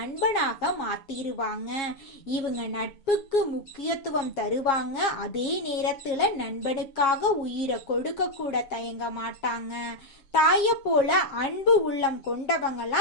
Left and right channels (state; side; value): late; right; 7.4 ms